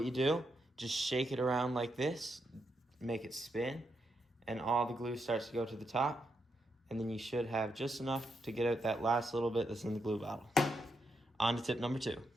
you do, just shake it around like this, make it spin, and all the glue starts to go to the top, and then you should have just enough to get out that last little bit that's in the glue bottle. On to tip number 2.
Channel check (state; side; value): normal; both; correlation 0.81